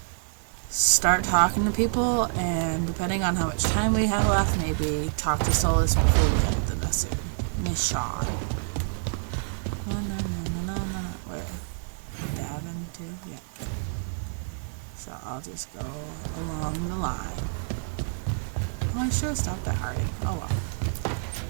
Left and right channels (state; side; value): silent; left; digital silence